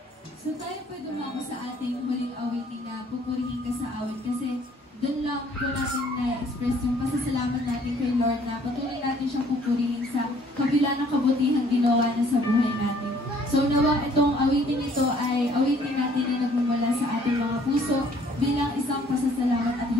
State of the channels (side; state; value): both; normal; correlation 0.60